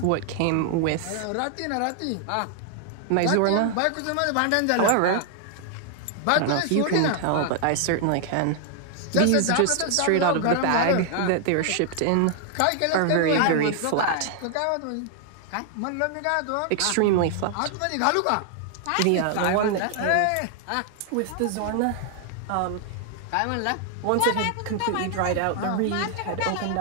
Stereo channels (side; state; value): both; different; correlation 0.00